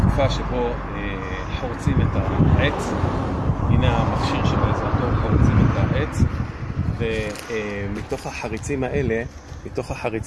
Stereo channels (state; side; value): identical; both; correlation 1.00